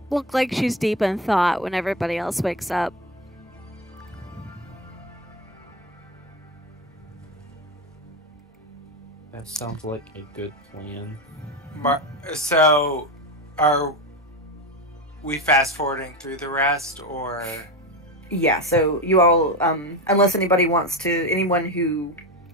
look like she's deep in thought when everybody else wakes up. That sounds like a good plan. So, are we fast forwarding through the rest, or? Yeah, so you all, unless anyone who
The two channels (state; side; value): normal; both; correlation 0.19